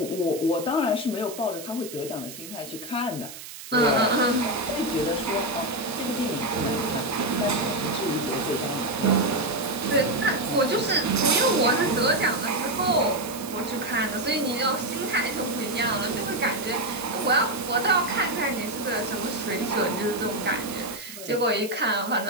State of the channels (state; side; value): noise; right; hiss, 13 dB below the sound